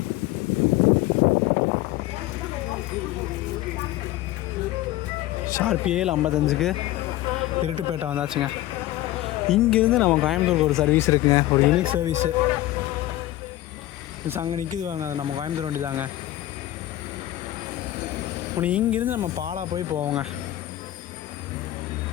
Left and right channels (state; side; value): quieter; right; 15.5 dB